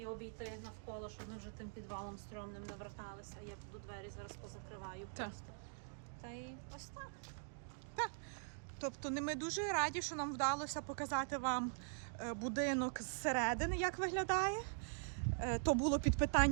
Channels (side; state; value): left; silent; digital silence